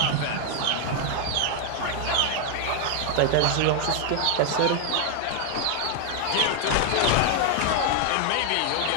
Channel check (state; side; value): different; both; correlation 0.00